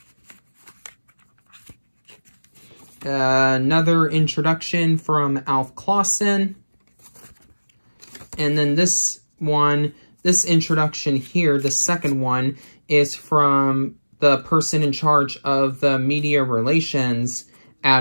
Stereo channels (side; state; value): both; inverted; correlation -1.00